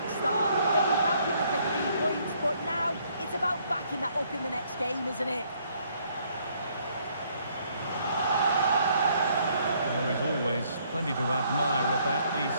start. They'll be happy with the 3 points, but now it's about backing that up in the next game, isn't it? There is always plenty to admire about the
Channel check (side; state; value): both; inverted; correlation -0.67